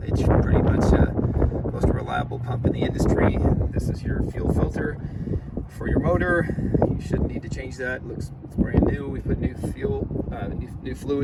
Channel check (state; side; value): identical; both; correlation 1.00